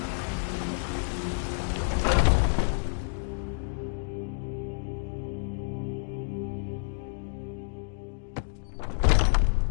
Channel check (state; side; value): silent; right; 59 dB below the other